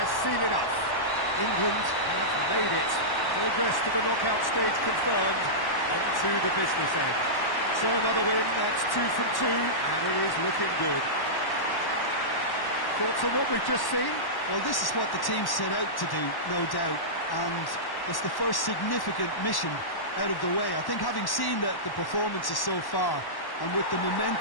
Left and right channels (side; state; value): right; late; 1.1 ms